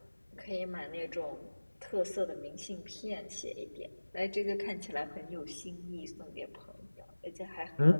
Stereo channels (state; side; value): inverted; both; correlation -1.00